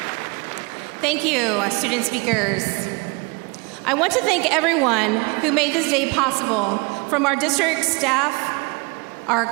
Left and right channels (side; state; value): left; quieter; 28.0 dB